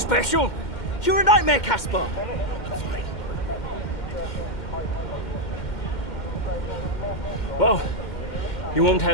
You're a nightmare, Casper! I'm fine. Well, you won't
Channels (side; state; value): right; late; 2.1 ms